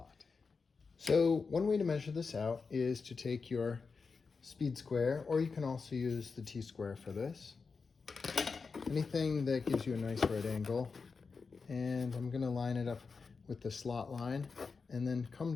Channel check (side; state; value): right; quieter; 4.8 dB